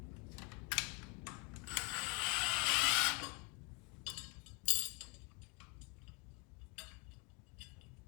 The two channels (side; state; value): right; quieter; 28.7 dB